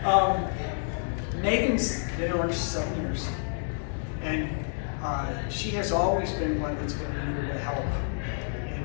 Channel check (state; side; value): silent; right; digital silence